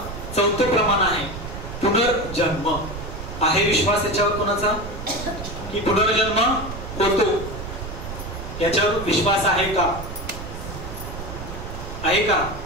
4थं प्रमाण आहे पुनर्जन्म. आहे विश्वास याच्यावर कोणाचा की पुनर्जन्म होतो, याच्यावर विश्वास आहे का? आहे का?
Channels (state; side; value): noise; right; rumble, 9 dB below the sound